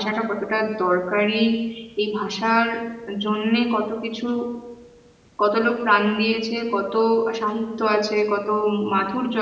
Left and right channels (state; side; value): identical; both; correlation 1.00